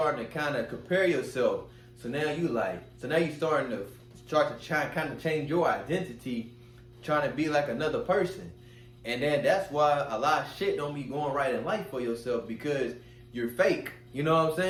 to kind of compare yourself. So now you starting to kind of change your identity, trying to be like another person. And then that's why a lot of shit don't be going right in life for yourself, because you're fake. You know what I'm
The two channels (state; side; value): identical; both; correlation 1.00